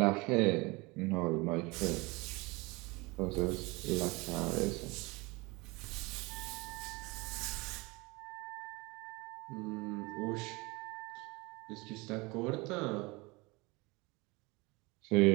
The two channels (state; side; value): quieter; left; 25.1 dB